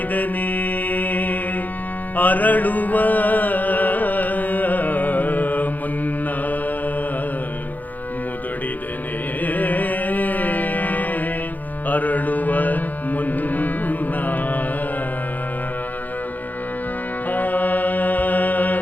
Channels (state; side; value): late; right; 0.082 ms